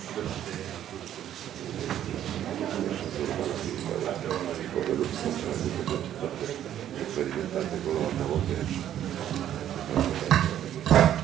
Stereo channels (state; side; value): quieter; left; 11.0 dB